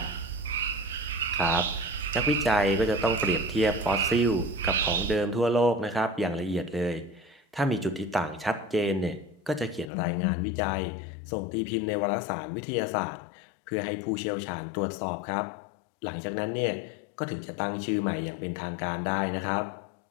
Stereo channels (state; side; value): drops out; right; at 9.9 s